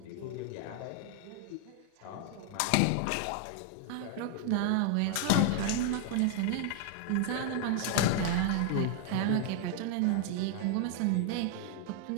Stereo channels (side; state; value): both; different; correlation 0.00